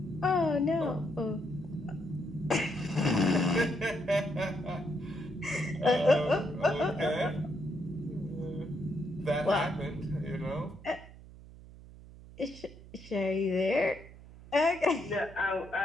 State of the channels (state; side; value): noise; right; hum, 18 dB below the sound